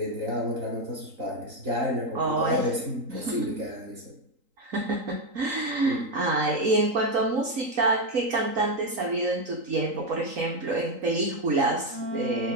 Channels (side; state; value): left; late; 3.9 ms